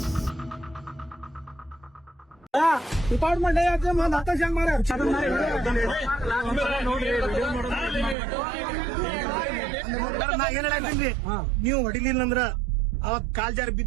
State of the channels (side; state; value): left; drops out; at 8.2 s